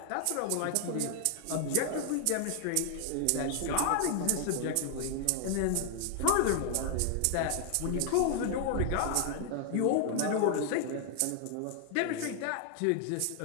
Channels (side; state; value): both; different; correlation 0.00